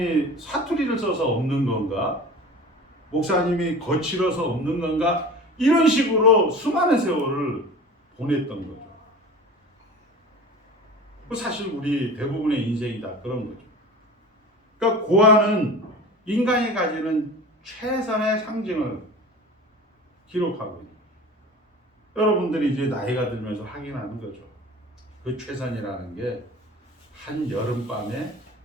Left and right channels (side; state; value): both; normal; correlation 0.37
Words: 사투리를 써서 없는 건가? 목사님이 거칠어서 없는 건가? 이런 식으로 수많은 세월을 보냈던 거죠. 사실 우리 대부분의 인생이 다 그런 거죠. 그러니까 고아는 인간이 가지는 최선의 상징을 기록하고 있는, 여러분들이 이제 나이가 들면서 확인하는 거죠. 그 최선이라는 게 한 여름밤에